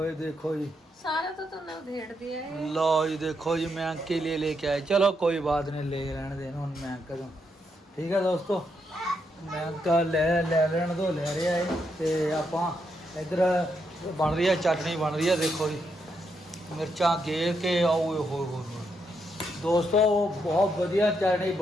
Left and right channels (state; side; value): normal; both; correlation 0.80